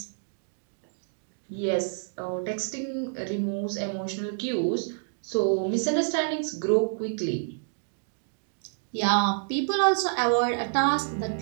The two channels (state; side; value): silent; left; digital silence